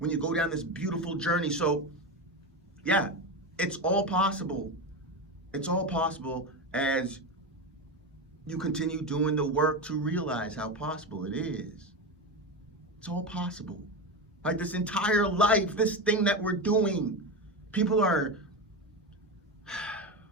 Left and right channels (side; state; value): both; normal; correlation 0.18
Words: you go down this beautiful journey. So, yeah, it's all possible. It's all possible as you continue doing the work to realize how possible it is. It's all possible. Like, this entire life, this thing that we're doing, people are